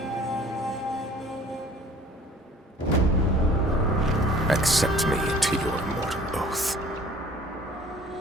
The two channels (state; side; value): normal; both; correlation 0.51